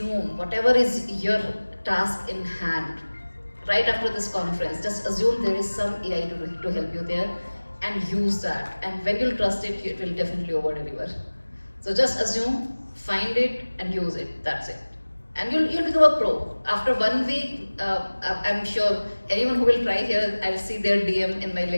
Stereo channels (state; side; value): inverted; both; correlation -1.00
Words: whatever is your task in hand. Right after this conference, just assume there is some AI to help you there, and use that. And when you'll trust it, it will definitely over deliver. So just assume, find it, and use it. That's it. And you'll become a pro. After 1 week, I'm sure anyone who will try here, I'll see their DM in my